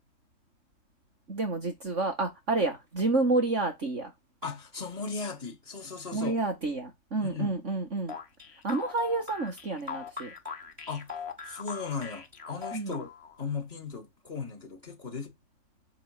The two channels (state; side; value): late; left; 2.9 ms